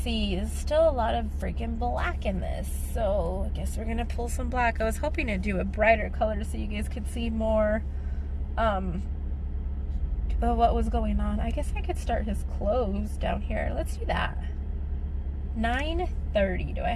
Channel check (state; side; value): identical; both; correlation 1.00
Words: There's still a lot of freaking black in this. So I guess we're going to pull some black. I was hoping to do a brighter color so you guys could see more of what was going on. I guess I could start his clothes down here. Let's do that. 9:30. Do I